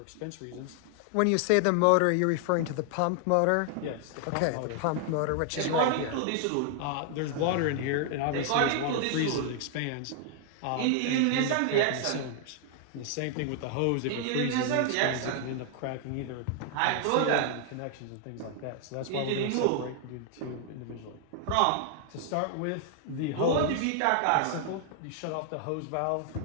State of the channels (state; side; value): different; both; correlation 0.00